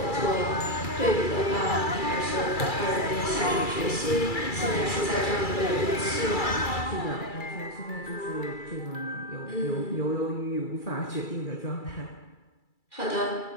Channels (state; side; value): late; right; 2.3 ms